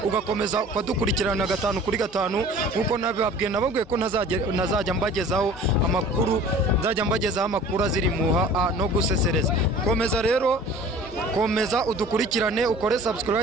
ugakomeza kwadukurikirana 5 kuri 5 nkuko nababwiye nababwiye ko nazajya mbagezaho amakuru aziri muha no gusesereza. Komeza udukurikirane ukore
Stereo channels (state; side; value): normal; both; correlation 0.45